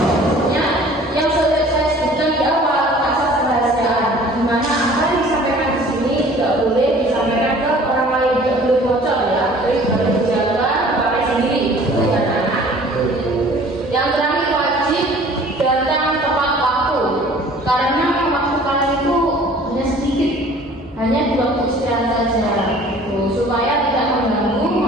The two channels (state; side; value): normal; both; correlation 0.50